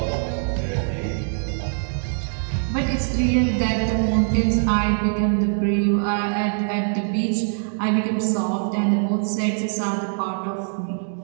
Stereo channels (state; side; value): silent; left; digital silence